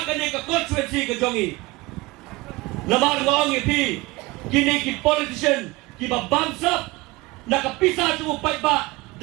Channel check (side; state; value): left; quieter; 22.4 dB